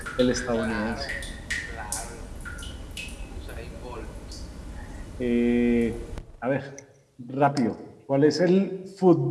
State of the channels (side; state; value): both; identical; correlation 1.00